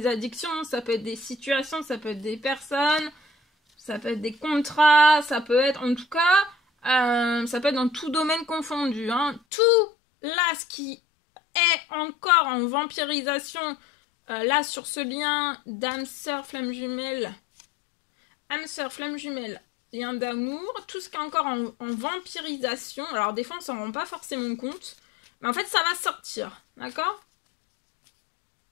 addictions, ça peut être des situations, ça peut être des personnes, ça peut être des contrats, ça peut être, en tout cas, ça peut être dans tout domaine confondu. Hein. Tout là, ce qui est encore en vampirisation, là sur ce lien d'âme sœur flamme jumelle, lien d'amour, tout ce qui est encore en vampirisation. Alors des fois on s'en rend pas forcément compte, mais en fait ça va sortir, d'accord?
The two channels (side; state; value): right; drops out; at 9.4 s